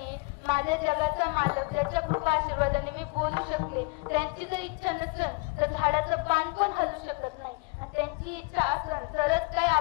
माझ्या जगाचा मालक ज्याच्या कृपा आशीर्वादाने मी बोलू शकले, त्यांची जर इच्छा नसेल तर झाडाचं पान पण हलू शकत नाही. आणि त्यांची इच्छा असेल तरच काय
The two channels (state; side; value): quieter; right; 28.8 dB